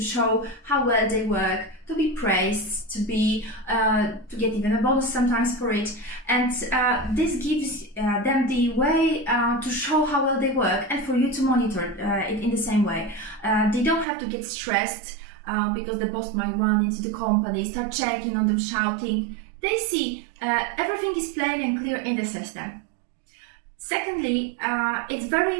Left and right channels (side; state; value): left; drops out; at 14.1 s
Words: show how well they work, to be praised, to get even a bonus sometimes for it. And this gives them the way to show how well they work, and for you to monitor it in the same way. They don't have to get stressed because the boss might run into the company, start checking on them, shouting. They see everything is plain and clear in the system. Secondly, it's very